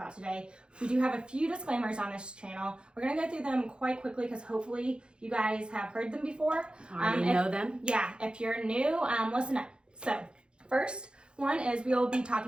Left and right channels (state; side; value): late; left; 0.053 ms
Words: today, we do have a few disclaimers on this channel. We're going to go through them quite quickly because hopefully you guys have heard them before. Already know them? Yeah, if you're new, listen up. So first one is we will be